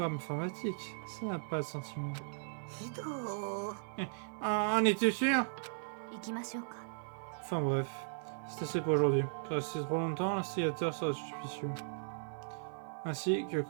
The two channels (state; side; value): silent; left; 53 dB below the other